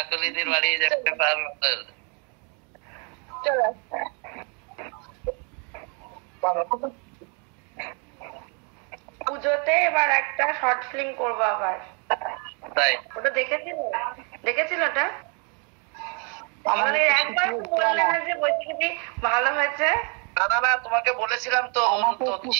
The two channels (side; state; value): left; quieter; 36.9 dB